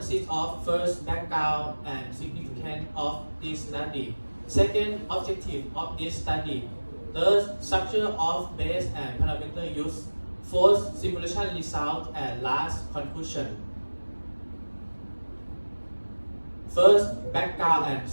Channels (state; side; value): inverted; both; correlation -1.00